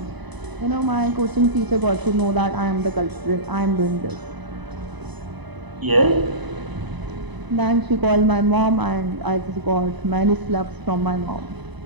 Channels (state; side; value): late; left; 1.0 ms